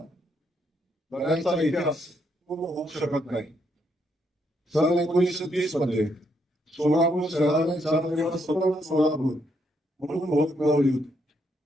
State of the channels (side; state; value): both; normal; correlation 0.76